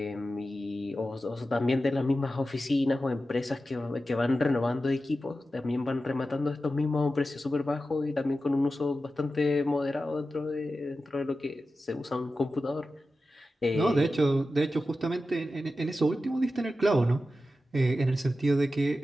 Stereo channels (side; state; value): both; normal; correlation 0.92